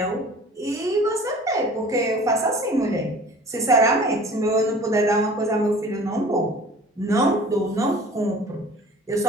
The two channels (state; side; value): normal; both; correlation 0.45